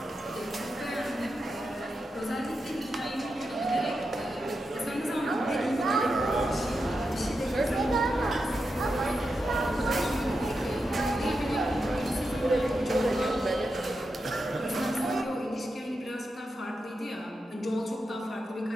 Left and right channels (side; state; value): both; normal; correlation 0.88